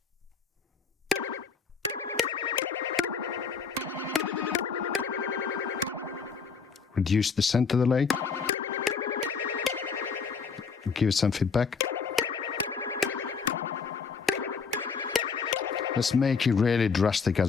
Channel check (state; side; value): quieter; right; 5.5 dB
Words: Reduce the center delay. Give it some feedback. Let's make it really drastic